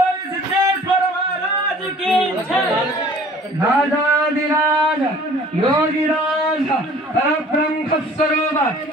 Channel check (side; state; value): both; normal; correlation 0.50